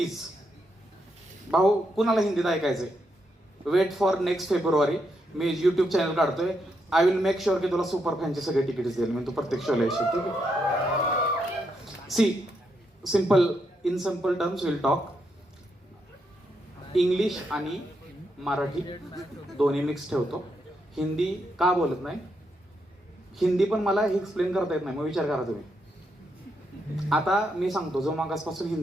भाऊ कुणाला हिंदीत ऐकायचंय, वेट फॉर नेक्स्ट फेब्रुवारी. मी युट्यूब चॅनल काढतोय. आय विल मेक शुअर की तुला सुपर फॅनचे सगळे तिकीट्स देईल मी, तू प्रत्येक शोला येशील. ठीक आहे? See simple, in simple terms will talk. English आणि मराठी दोन्ही मिक्स ठेवतो. हिंदी का बोलत नाही, हिंदी पण मला हे एक्सप्लेन करता येत नाही, मग विचार करा तुम्ही. आता मी सांगतो, जो मागासपासून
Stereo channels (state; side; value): normal; both; correlation 0.80